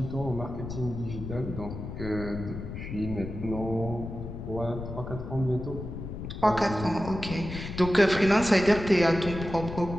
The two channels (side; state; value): left; noise; rumble, 8 dB below the sound